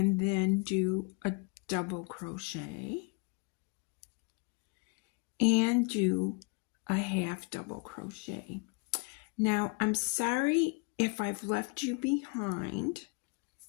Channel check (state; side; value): quieter; right; 30.8 dB